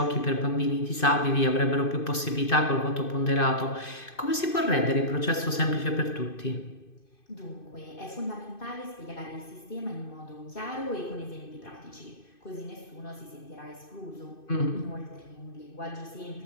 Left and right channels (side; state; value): right; late; 2.5 ms